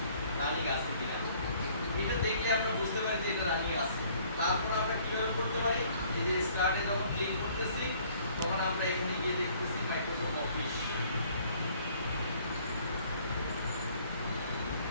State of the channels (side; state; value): both; inverted; correlation -0.59